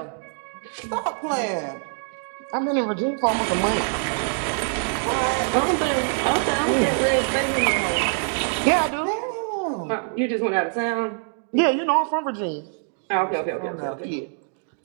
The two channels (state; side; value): silent; left; 55 dB below the other